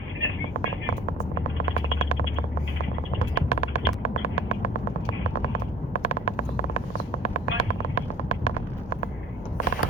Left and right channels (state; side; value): normal; both; correlation 0.50